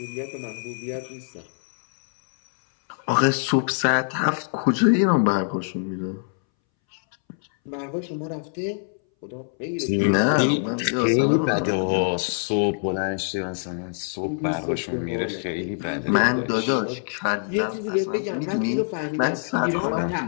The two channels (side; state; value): right; silent; 61 dB below the other